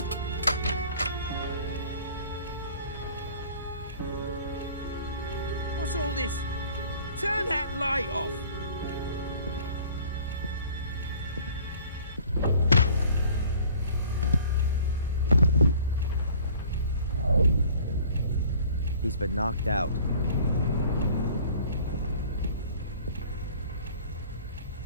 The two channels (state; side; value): inverted; both; correlation -0.50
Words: What's all this? Turn that light off! He's been knocked out.